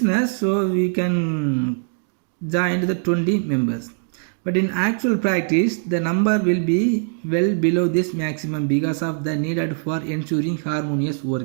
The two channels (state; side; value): silent; left; 63 dB below the other